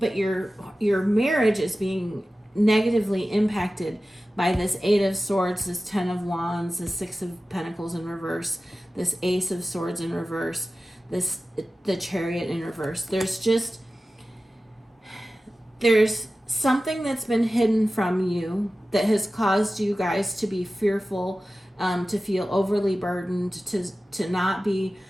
your marriage is being negatively impacted by this 8 of Swords, this 10 of Wands, this 6 of Pentacles in reverse, this Ace of Swords in reverse, the Chariot in reverse. There's something that's been hidden from you that has caused you guys to be fearful, to feel overly burdened, to not be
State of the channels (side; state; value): both; normal; correlation 0.95